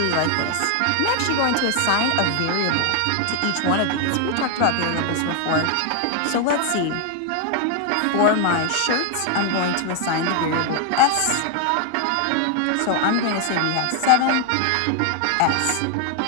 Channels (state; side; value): different; both; correlation 0.00